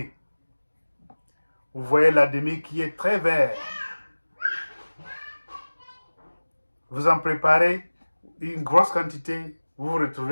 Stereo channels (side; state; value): both; inverted; correlation -1.00